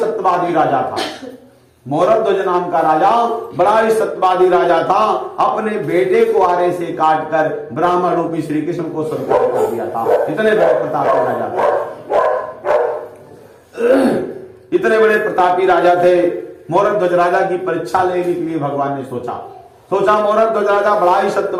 राजा था। मोरध्वज नाम का राजा बड़ा ही सत्यवादी राजा था। अपने बेटे को आरे से काट कर ब्राह्मण रूपी श्री कृष्ण को स्वीकार कर दिया था। इतने बड़े प्रतापी राजा थे, इतने बड़े प्रतापी राजा थे। मोरध्वज राजा की परीक्षा लेने के लिए भगवान ने सोचा मोरध्वज राजा बड़ा ही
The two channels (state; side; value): identical; both; correlation 1.00